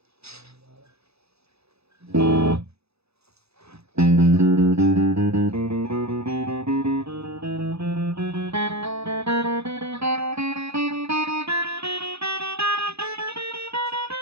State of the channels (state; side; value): late; left; 0.79 ms